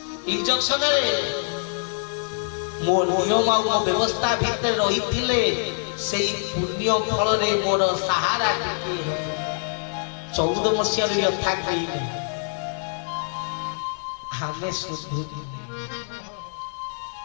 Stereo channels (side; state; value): right; silent; digital silence